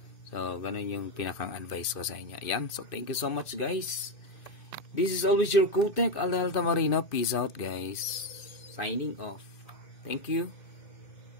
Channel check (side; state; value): right; late; 2.5 ms